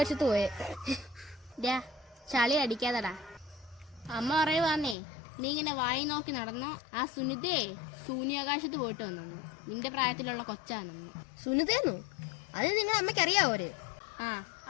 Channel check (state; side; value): drops out; right; at 5.0 s